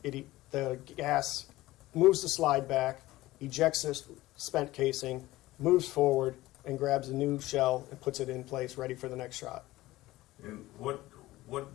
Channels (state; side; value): quieter; right; 17.5 dB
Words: the gas moves the slide back, ejects the spent casing, moves forward, and grabs a new shell and puts it in place, ready for the next shot. And what